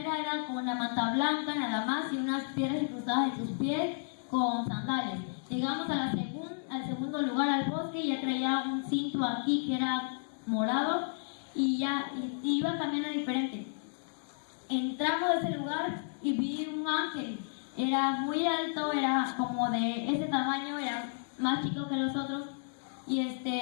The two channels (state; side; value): silent; right; digital silence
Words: era con una manta blanca nada más y unas piedras incrustadas en sus pies con sandalias. Llegamos al segundo lugar, al bosque, y ya traía un cinto aquí que era morado y iba caminando diferente. Entramos a ese lugar y vi un ángel. Era muy alto, era como de ese tamaño, era más chico que los otros